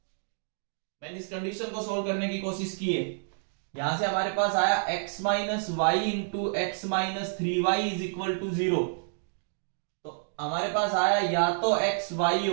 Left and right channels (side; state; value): left; silent; digital silence